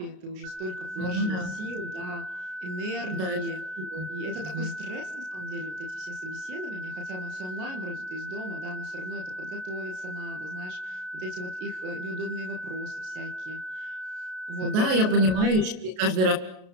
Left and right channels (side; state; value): left; late; 33 ms